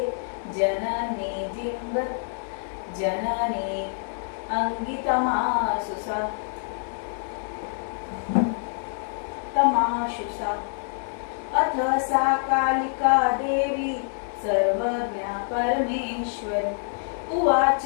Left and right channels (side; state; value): right; silent; digital silence